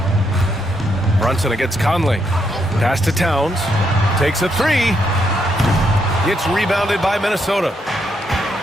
Brunson against Conley. Pass to Towns. Takes a three. Gets rebounded by Minnesota.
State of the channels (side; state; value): both; normal; correlation 0.77